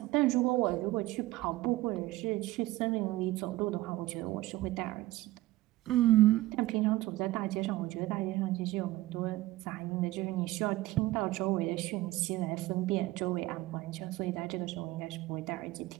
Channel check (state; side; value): quieter; left; 17.6 dB